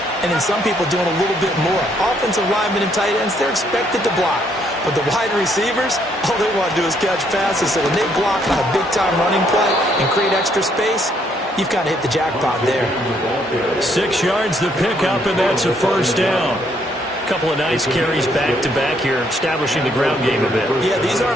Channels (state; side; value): normal; both; correlation 0.70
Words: and then some people doing a little bit more. Offensive linemen and tight ends, they're expected to block. But the wide receivers, all they want to do is catch passes. So when they block on a big-time running play and create extra space, you've kind of hit the jackpot there. 6 yards the pickup, and that's a first down. Couple of nice carries back-to-back here, establishing the ground game a bit. Yeah, these